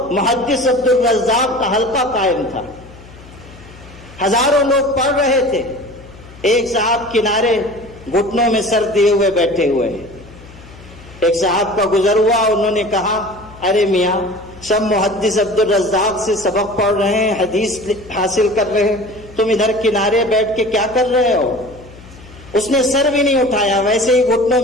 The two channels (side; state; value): left; noise; hum, 20 dB below the sound